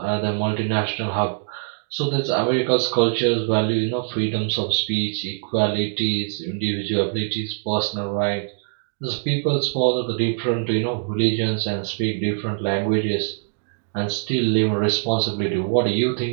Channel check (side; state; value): left; silent; digital silence